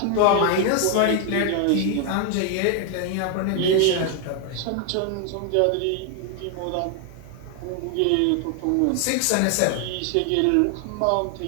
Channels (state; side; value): different; both; correlation 0.00